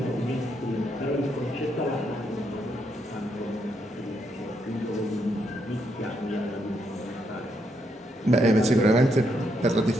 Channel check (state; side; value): normal; both; correlation 0.77